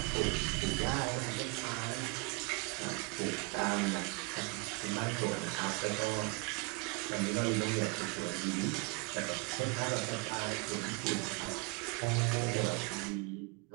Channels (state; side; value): quieter; left; 27.6 dB